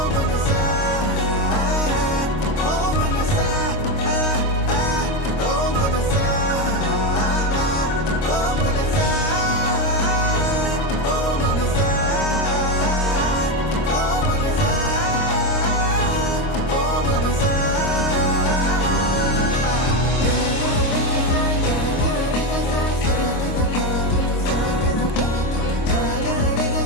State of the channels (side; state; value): right; late; 26 ms